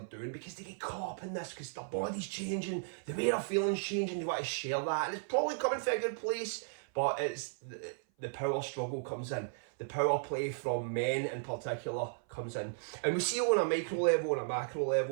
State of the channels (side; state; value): left; silent; 54 dB below the other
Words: doing because they get caught up in this, because their body's changing, the way they're feeling's changing, they want to share that, and it's probably coming from a good place, but it's the power struggle comes in. The power play from men in particular comes in. And we see it on a micro level and a macro